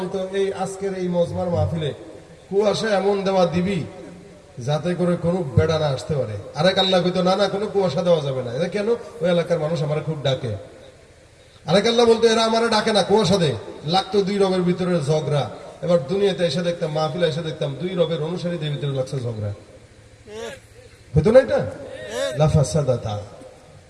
এই আজকের এই মজমার মাহফিলে কুয়াশা এমন দেওয়া দিবি যাতে করে কোনো বেড়া না আসতে পারে। আরেক আল্লাহ কইতো না না কোনো কুয়াশা দেওয়া যাবে না। এটা কেন? ওই এলাকার মানুষ আমার খুব ডাকে। আরেক আল্লাহ বলতো এরা আমার ডাকে না, কুয়াশা দে। লাগতো 2 রবের ভিতরে ঝগড়া। এবার দুনিয়াতে এসে দেখতাম, মাহফিলে এসে দেখতাম 2 রবের অনুসারীদের ভিতরে লাগছে ঝগড়া। হইতো না এটা? লাফাসাদাতা,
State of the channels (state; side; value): identical; both; correlation 1.00